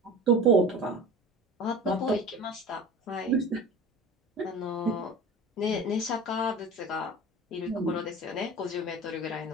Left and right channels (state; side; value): normal; both; correlation 0.36